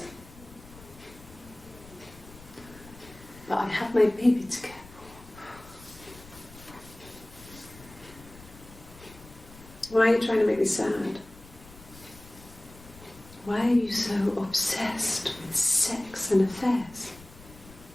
But I have my baby to care for. Why are you trying to make me sad? Why are you so obsessed with sex and affairs?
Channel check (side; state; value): left; noise; rumble, 20 dB below the sound